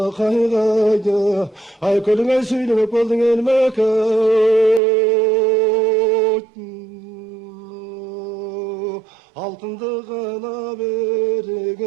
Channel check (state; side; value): drops out; left; at 4.8 s